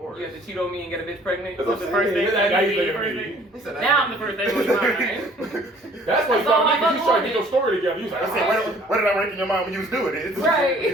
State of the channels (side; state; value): both; normal; correlation 0.55